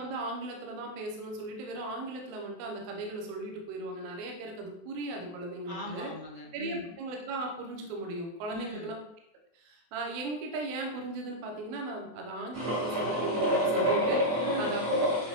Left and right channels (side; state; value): left; late; 23 ms